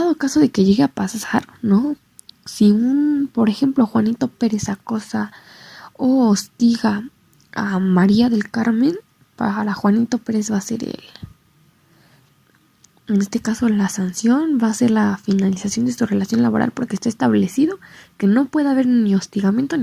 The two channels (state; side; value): identical; both; correlation 1.00